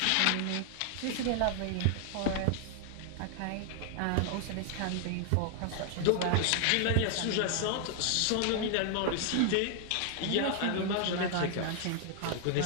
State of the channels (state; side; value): different; both; correlation 0.00